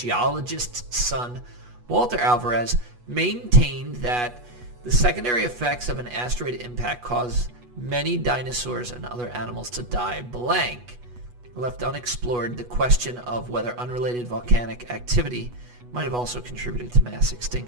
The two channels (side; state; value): left; late; 8.2 ms